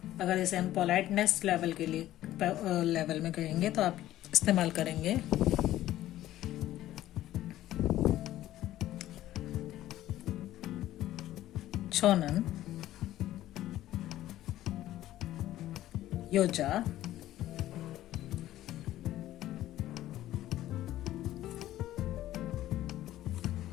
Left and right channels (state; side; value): quieter; right; 14.1 dB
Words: अगर इसे हम पोलाइटनेस लेवल में कहेंगे तो आप इस्तेमाल करेंगे छोनन योजा